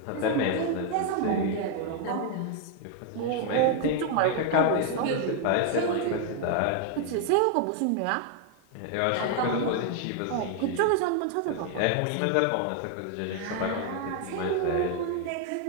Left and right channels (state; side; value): different; both; correlation 0.00